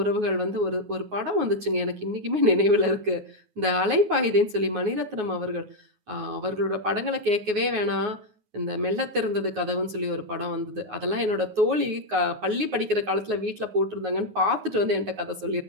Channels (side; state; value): left; late; 9.5 ms